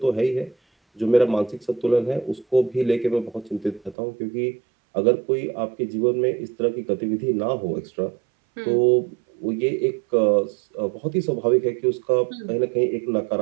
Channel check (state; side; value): drops out; left; at 4.0 s